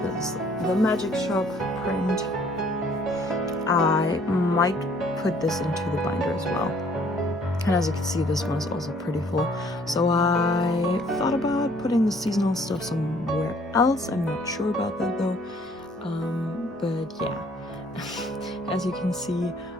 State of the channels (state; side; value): normal; both; correlation 0.60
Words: This is the Magic Shop print. I might put this into the binder as well, and as you can see, this one is also pretty full, so I thought about putting the seasonal stuff somewhere else. I'm not sure about that though, but yeah. As you can see,